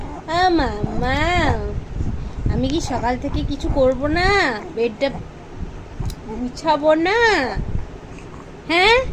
মাম্মাম। আমি কি সকাল থেকে কিছু করব না? বেডটা গুছাবো না? হ্যাঁ,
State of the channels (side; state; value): both; identical; correlation 1.00